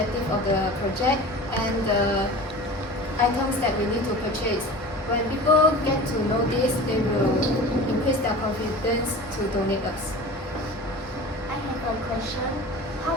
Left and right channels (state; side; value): normal; both; correlation 0.36